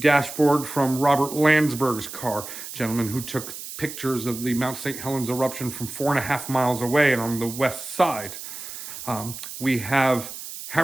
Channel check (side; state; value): right; noise; hiss, 10 dB below the sound